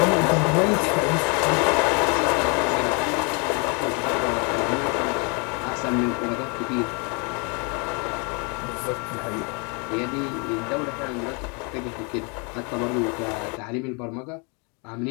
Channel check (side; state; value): right; quieter; 33.8 dB